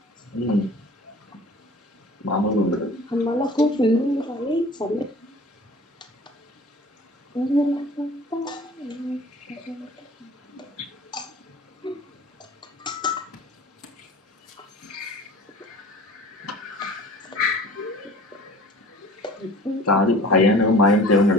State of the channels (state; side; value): normal; both; correlation 0.44